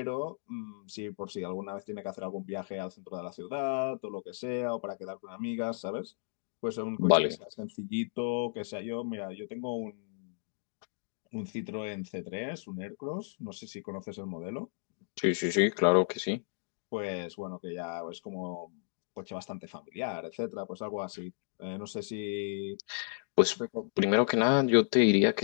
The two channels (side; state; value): right; silent; digital silence